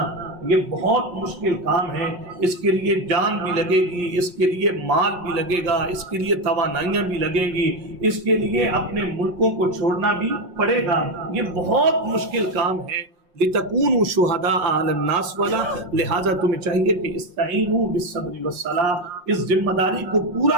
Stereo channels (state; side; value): late; left; 5.7 ms